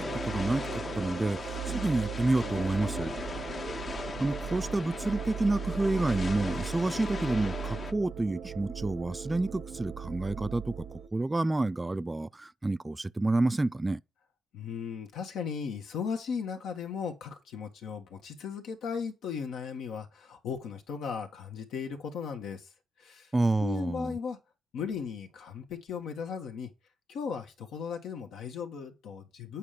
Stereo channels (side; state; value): both; normal; correlation 0.89